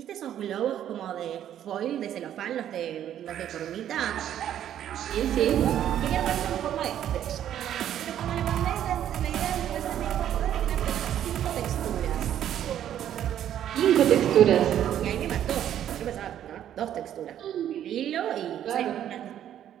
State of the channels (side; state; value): left; quieter; 10.7 dB